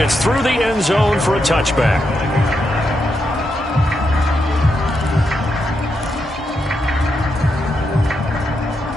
through the end zone for a touchback.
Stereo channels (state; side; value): normal; both; correlation 0.83